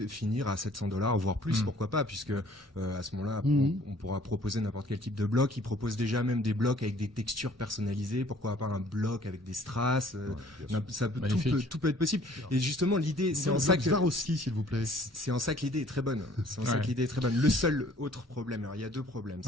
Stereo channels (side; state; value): both; normal; correlation 0.55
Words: finir à $700, voire plus, pourquoi pas, puisque à ce moment-là, on pourra proposer n'importe quel type de bloc. Ils proposent déjà même des blocs avec des textures personnalisées. Pourquoi pas un bloc avec des strass tout peut être possible. Et justement, l'idée, c'est en ça que Swarovski, s'il vous plaît. c'est en ça que l'idée est très bonne. C'est en ça Ouais. que l'idée est très bonne. Le seul autre problème, alors il y a 2 problèmes,